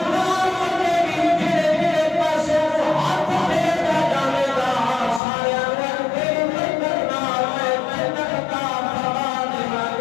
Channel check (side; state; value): right; drops out; at 5.2 s